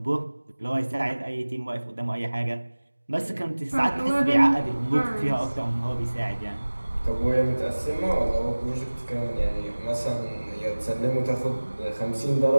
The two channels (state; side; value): inverted; both; correlation -1.00